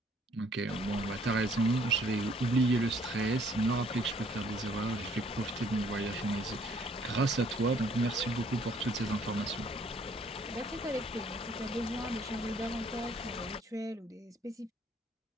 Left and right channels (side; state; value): both; normal; correlation 0.62